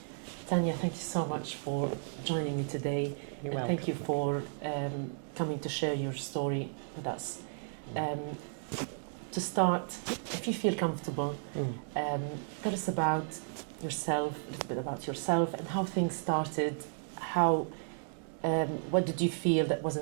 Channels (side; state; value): left; silent; digital silence